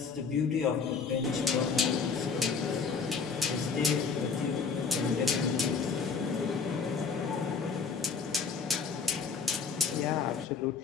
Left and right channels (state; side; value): quieter; right; 5.3 dB